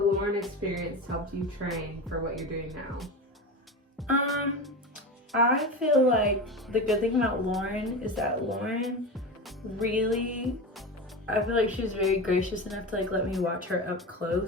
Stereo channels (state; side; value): normal; both; correlation 0.25